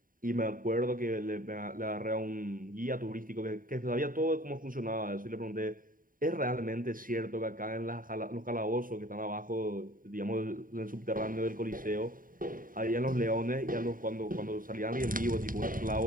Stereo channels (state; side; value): late; left; 0.40 ms